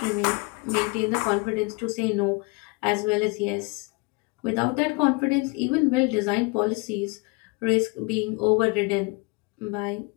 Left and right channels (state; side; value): quieter; right; 28.6 dB